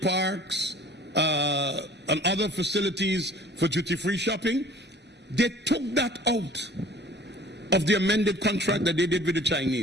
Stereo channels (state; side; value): normal; both; correlation 0.50